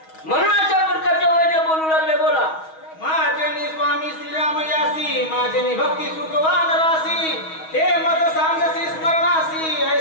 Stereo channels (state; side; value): late; right; 6.3 ms